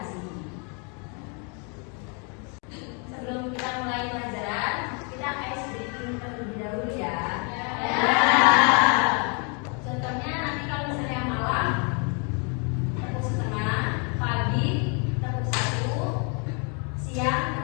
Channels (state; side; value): quieter; right; 36.0 dB